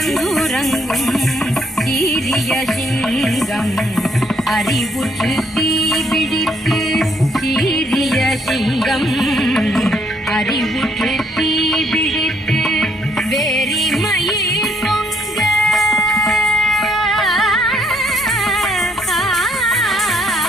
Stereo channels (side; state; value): both; normal; correlation 0.69